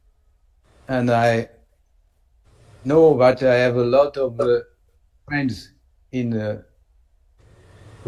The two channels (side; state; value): both; identical; correlation 1.00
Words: And I know that I have a lot of friends in